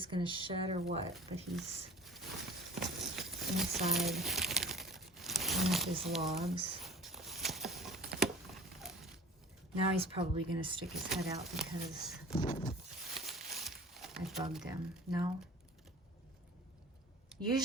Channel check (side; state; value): both; normal; correlation 0.44